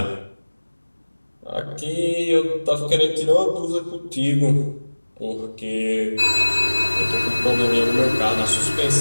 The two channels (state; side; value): inverted; both; correlation -1.00